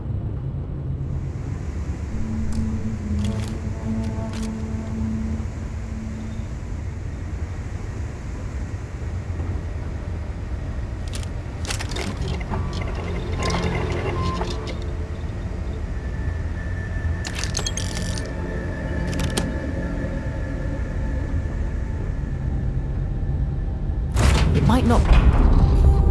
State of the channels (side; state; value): both; identical; correlation 1.00